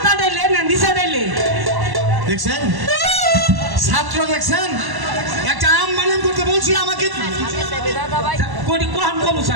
ডাইলে না নিচে ডাইলে দেখছেন ছাত্র দেখছেন একটা আম বানান করতে বলছি আমাকে কোনি কোন কোন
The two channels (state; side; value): late; left; 1.1 ms